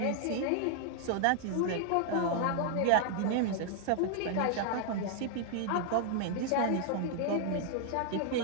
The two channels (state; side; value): different; both; correlation 0.00